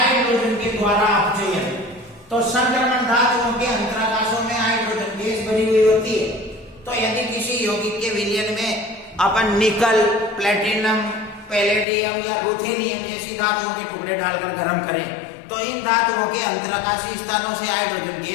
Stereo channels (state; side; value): drops out; right; at 11.9 s